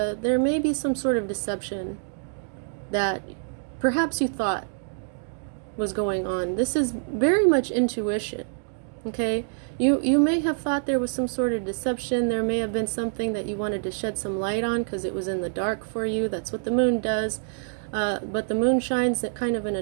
may be some sort of deception that perhaps you thought was going on. This is very much intuition. Okay, you may have thought there was some sort of deception. There may have been something that you wanted to shed some light on because it was in the dark for you. That's what the moon does. But the moon shines kind of in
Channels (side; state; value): left; silent; digital silence